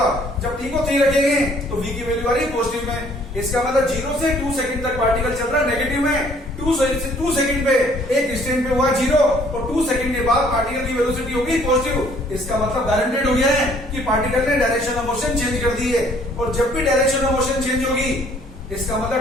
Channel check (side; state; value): both; normal; correlation 0.60